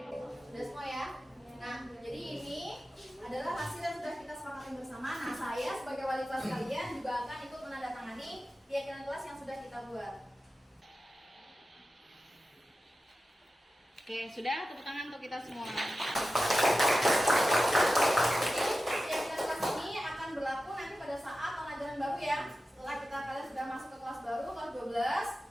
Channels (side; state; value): both; normal; correlation 0.93